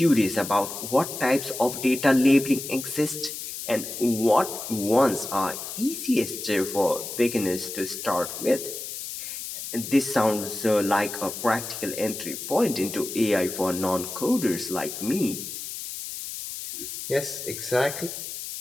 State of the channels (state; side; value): noise; left; hiss, 8 dB below the sound